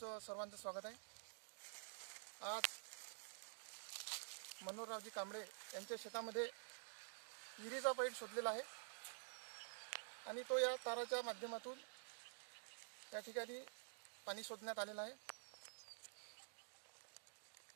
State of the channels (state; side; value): silent; left; digital silence